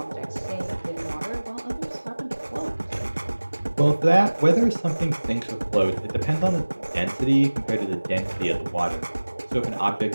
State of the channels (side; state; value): both; inverted; correlation -1.00